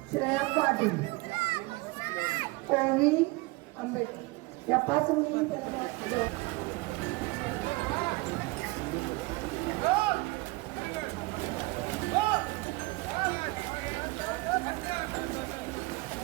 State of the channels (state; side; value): quieter; left; 23.7 dB